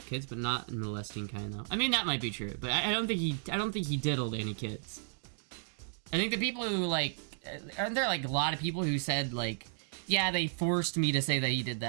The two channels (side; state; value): left; silent; digital silence